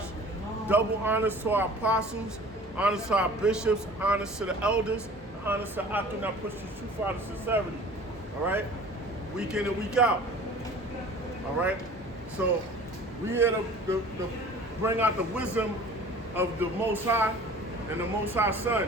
Double honors to our apostles, honors to our bishops, honors to the elders, honors to Akim that push the truth out of sincerity. All right? Week in and week out. All right? So we here to bring out the wisdom of the Most High and the Most High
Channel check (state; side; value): normal; both; correlation 0.45